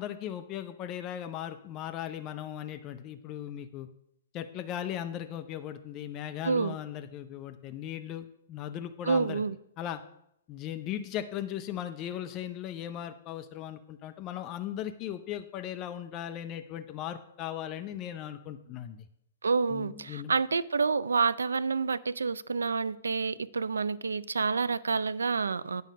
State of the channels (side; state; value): both; inverted; correlation -0.62